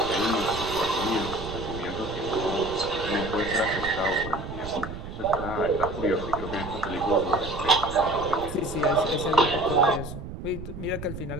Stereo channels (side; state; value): right; noise; rumble, 9 dB below the sound